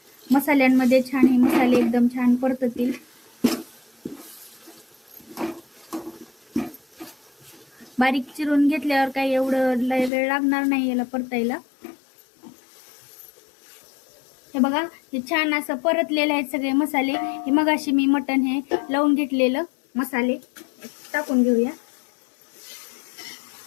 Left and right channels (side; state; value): right; drops out; at 10.1 s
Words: मसाल्यांमध्ये छान हे मसाले एकदम छान परततील। बारीक चिरून घेतल्यावर काही एवढं वेळ लागणार नाही याला परतायला। हे बघा, हे छान असं परतलेले आहेत सगळे मसाले। हे मगाशी मी मटण हे लावून घेतलेलं मसाले टाकून घेऊया।